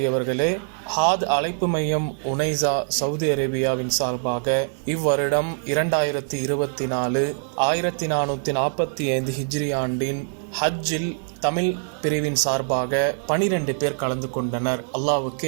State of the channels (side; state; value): left; silent; digital silence